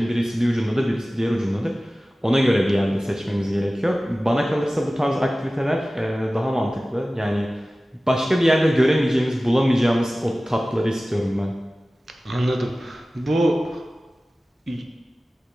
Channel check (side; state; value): both; normal; correlation 0.97